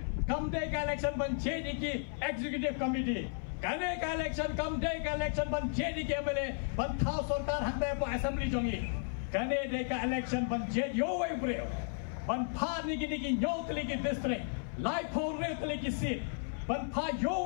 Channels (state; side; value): silent; right; 55 dB below the other